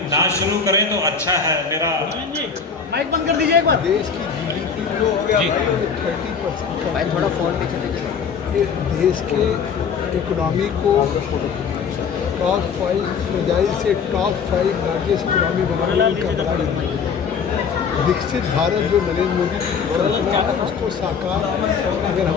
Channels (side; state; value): right; quieter; 6.1 dB